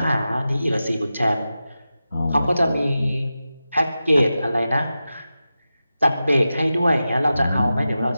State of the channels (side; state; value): both; inverted; correlation -0.92